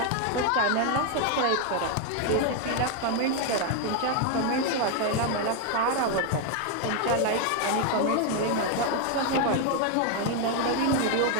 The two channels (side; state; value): both; different; correlation 0.01